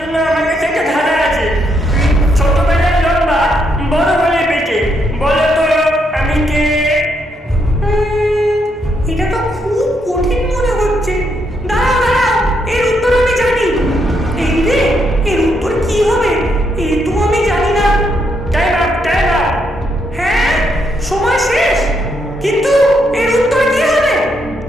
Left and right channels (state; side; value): normal; both; correlation 0.77